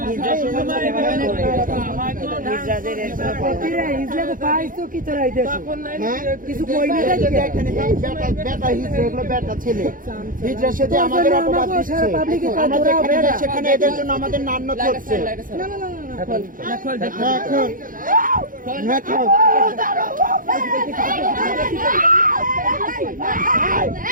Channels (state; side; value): late; left; 0.40 ms